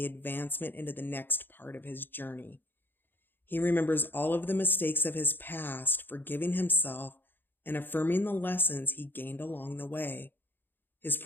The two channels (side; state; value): right; late; 0.097 ms